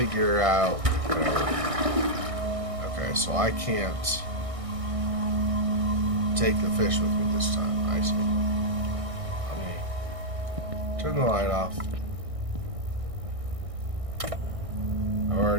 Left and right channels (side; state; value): left; late; 1.6 ms